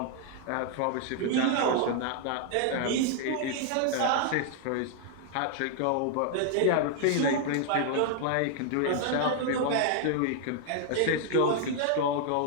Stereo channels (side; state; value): both; different; correlation 0.00